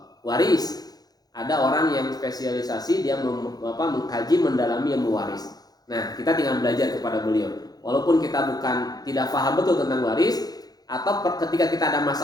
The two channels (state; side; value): late; right; 0.19 ms